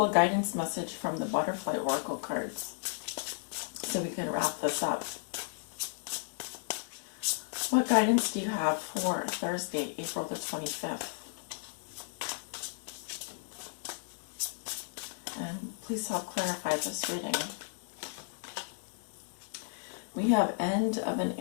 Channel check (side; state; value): right; silent; 55 dB below the other